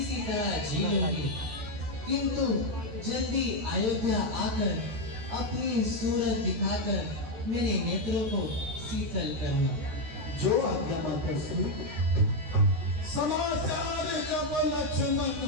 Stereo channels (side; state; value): left; late; 14 ms